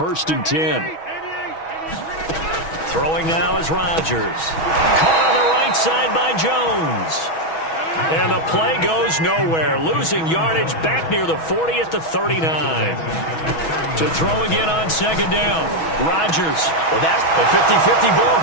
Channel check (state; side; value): late; right; 6.2 ms